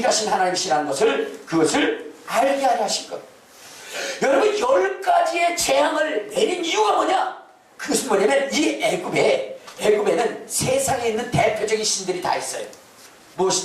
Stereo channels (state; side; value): identical; both; correlation 1.00